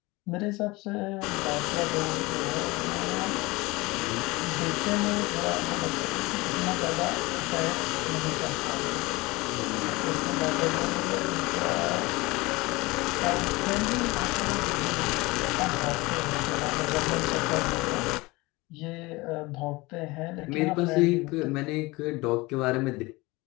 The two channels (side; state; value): right; quieter; 22.7 dB